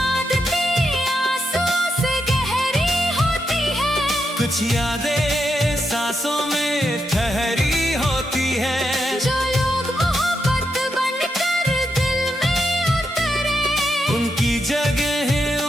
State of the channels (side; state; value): both; normal; correlation 0.83